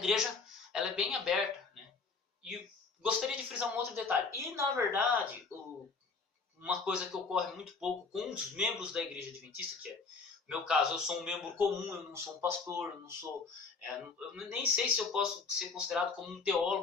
ela é bem aberta, né? E gostaria de frisar um outro detalhe. E na verdade, uma coisa que ocorre muito pouco com os membros da igreja adventista, que é no meu caso, eu sou um membro comum, eu não sou um pastor, eu não sou, eu nem sei se eu posso ser considerado como um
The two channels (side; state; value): right; quieter; 4.5 dB